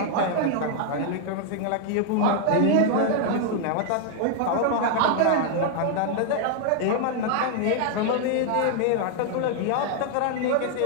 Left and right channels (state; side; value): different; both; correlation 0.00